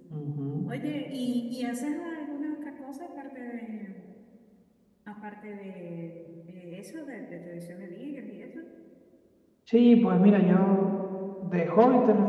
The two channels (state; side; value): identical; both; correlation 1.00